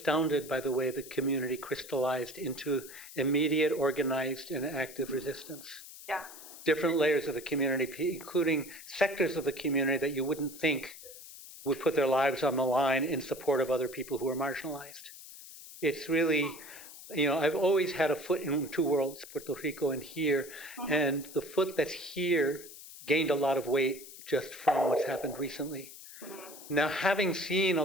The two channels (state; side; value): noise; left; hiss, 16 dB below the sound